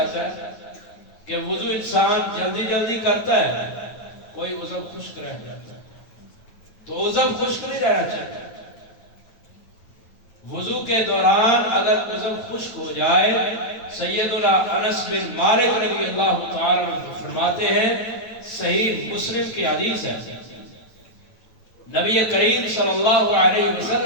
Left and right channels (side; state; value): right; late; 9.1 ms